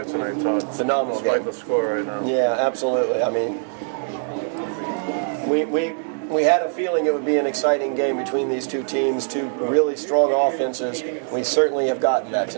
tonight, Todd. Phenomenal Despite game. the score right now. Yeah, absolutely. I mean, we had a feeling it would be an exciting game between these two teams, two really strong offenses. We certainly have gotten that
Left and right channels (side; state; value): left; silent; 64 dB below the other